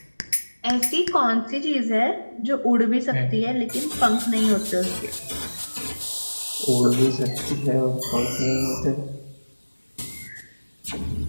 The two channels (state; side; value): inverted; both; correlation -1.00